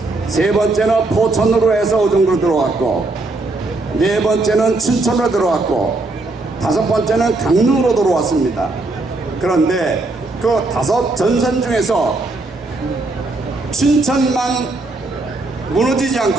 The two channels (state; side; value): quieter; left; 3.1 dB